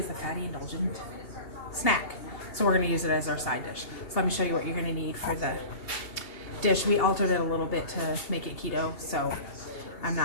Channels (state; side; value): late; right; 2.8 ms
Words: a fatty indulgent snack. So we're gonna use it as our side dish. So let me show you what you're gonna need for the dish. We altered it a little bit to make it keto, so I'm